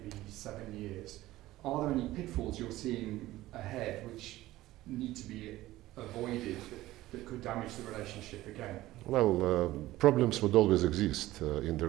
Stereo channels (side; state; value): left; quieter; 16.4 dB